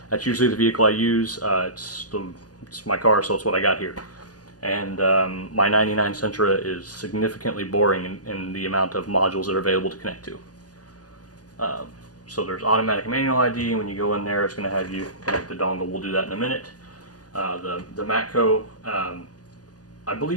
that's usually the vehicle I use. It's my car, so it's what I got here. And my 99 Sentra is significantly boring in the amount of modules that are available to connect to. So there's automatic manual ID. When you go in there, it's going to have you connect the dongle. We'll do that in a minute. The Matco, I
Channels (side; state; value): right; late; 0.68 ms